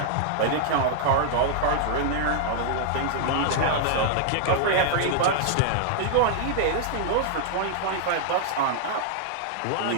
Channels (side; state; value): both; different; correlation -0.01